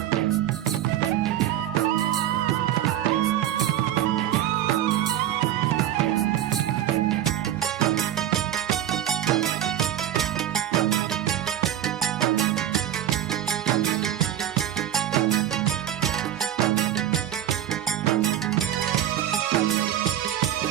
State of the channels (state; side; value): quieter; left; 11.6 dB